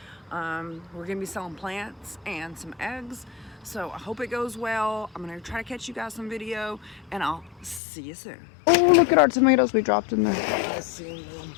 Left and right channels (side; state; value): right; drops out; at 7.8 s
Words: We're going to be selling plants and some eggs. So I hope it goes well. I'm going to try to catch you guys some video, and I'll see you soon. Oh, look at our tomatoes we dropped in there. I seen them.